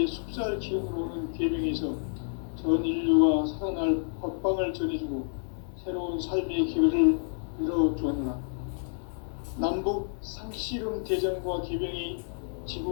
숲살 기운으로 오는 계명에서 전 인류가 살아날 법방을 전해주고 새로운 삶의 기회를 열어주었노라. 남북 상씨름 대전과 개병이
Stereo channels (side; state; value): right; silent; digital silence